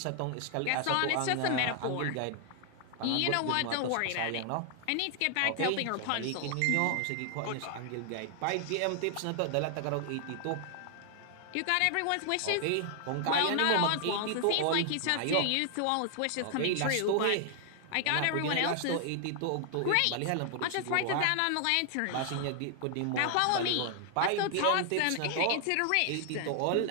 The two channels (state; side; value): different; both; correlation 0.00